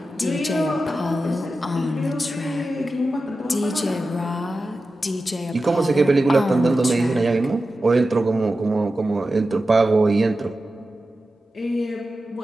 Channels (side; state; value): both; normal; correlation 0.93